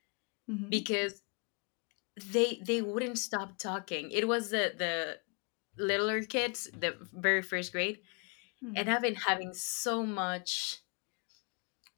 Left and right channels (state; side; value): quieter; right; 35.5 dB